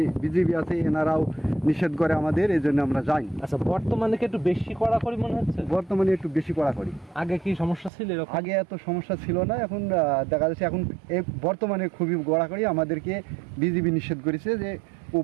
বিজিবি আছে, এনারাও নিষেধ করে আমাদের, এই জন্য আমরা যাই। আচ্ছা, বর্তমানে কি একটু বেশি কড়াকড়ি মনে হচ্ছে? বর্তমানে একটু বেশি কড়াকড়ি। আগে কি সমস্যা ছিল এরকম? আগে এত সমস্যা ছিল না, এখন দেখা যাচ্ছে এখন বর্তমানে খুবই কড়াকড়ি। আমাদেরকে বিজিবি নিষেধ করেছে যে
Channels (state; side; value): drops out; left; at 7.9 s